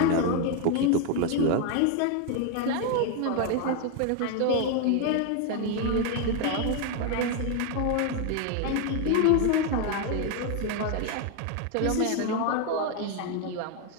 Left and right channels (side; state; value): both; different; correlation 0.01